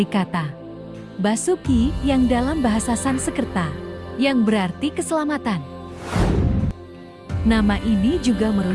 kata Basuki yang dalam bahasa Sanskerta, yang berarti keselamatan. Nama ini juga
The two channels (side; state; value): both; identical; correlation 1.00